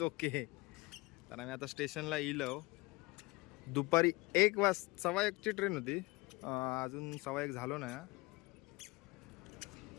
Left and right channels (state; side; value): quieter; right; 23.5 dB